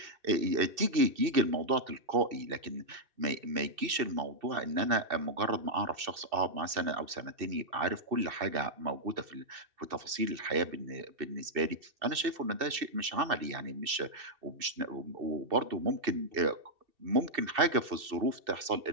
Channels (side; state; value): left; late; 2.7 ms